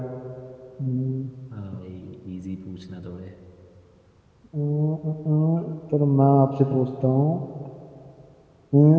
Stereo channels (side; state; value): both; identical; correlation 1.00